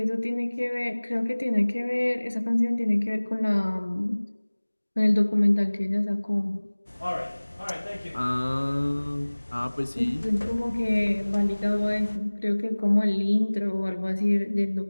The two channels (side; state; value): both; inverted; correlation -1.00